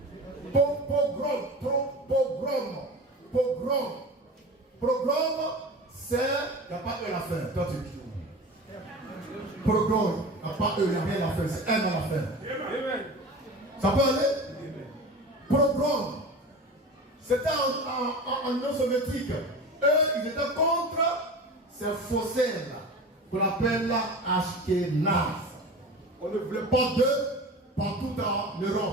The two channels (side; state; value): both; normal; correlation 0.33